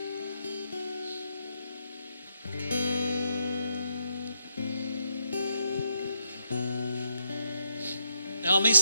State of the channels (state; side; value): inverted; both; correlation -0.78